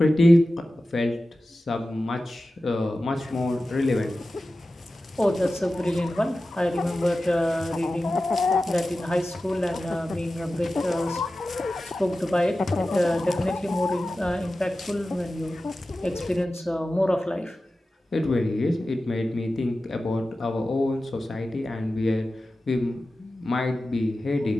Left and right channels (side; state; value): both; normal; correlation 0.94